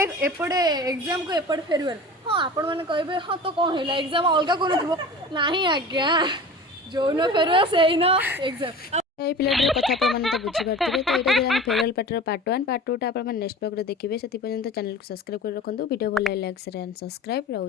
एपटे एग्जाम को एपटे फेरवेल हाँ आपण मैंने कहे हाँ तो कौन है एग्जाम अलग कौन थो ना आज्ञा जो न फेरवेल से ही न एग्जाम ये पिलाटर कथा आपने तो बुझीपारे। तो ये फेयरवेल पार्टी पार्ट 1 पार्ट 2 टा नेक्स्ट ब्लॉग देखिए से पर्यंत चैनल को सब्सक्राइब कर रखुद। वीडियो भल लाइक शेयर एंड सब्सक्राइब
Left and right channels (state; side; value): normal; both; correlation 0.36